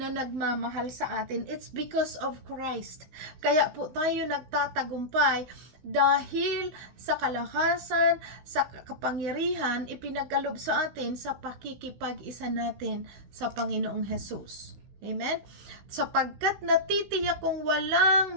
nagmamahal sa atin. It's because of Christ. Kaya po tayo nagtatagumpay dahil sa kalakasan, sa kapangyarihan ipinagkalob sa atin sa pakikipag-isa natin sa Panginoong Hesus. Amen? Sapagkat natitiyak kong walang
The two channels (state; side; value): late; left; 16 ms